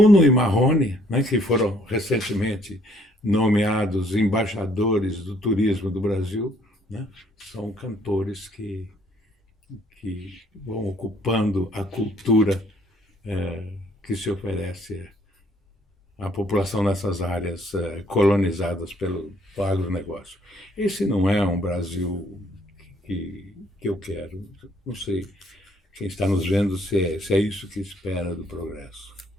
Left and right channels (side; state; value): both; normal; correlation 0.64